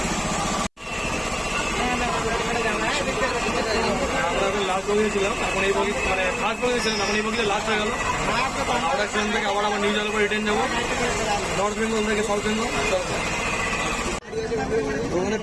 লাস্ট বগিতে ছিলাম, এখন এই বগি মানে ফার্স্ট বগিতে ছিলাম, এখন এই বগিতে লাস্ট হয়ে গেল। হাওড়া স্টেশন থেকে আবার আমার নিউ জলপাইগুড়ি রিটার্ন যাবো, নর্থ বেঙ্গল থেকে সাউথ বেঙ্গল। ওখানে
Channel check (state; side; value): identical; both; correlation 1.00